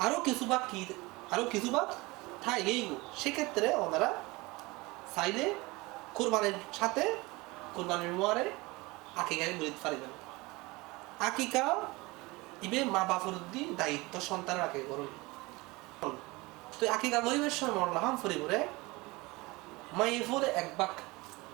কিছু ভাগ থাই গেইগু সেক্ষেত্রে ওনারা চাইলে কুরবানির সাথে কুরবানির মোয়ারে আকিকায় গরিত পারিবেন আকিকা ইবে মা বাপর দি দায়িত্ব সন্তানের আকিকা করুন তো আকিকা গরিবের সময় মরলাম ফরিবরে মাইয়ে ফলে এক ভাগ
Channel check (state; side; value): quieter; left; 23.0 dB